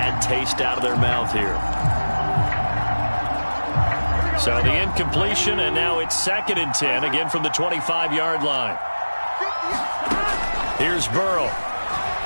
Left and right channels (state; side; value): inverted; both; correlation -1.00